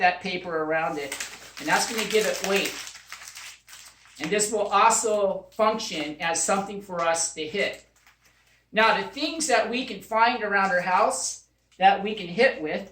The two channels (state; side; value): identical; both; correlation 1.00